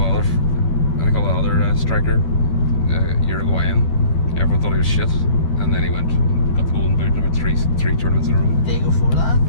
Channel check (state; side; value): late; right; 12 ms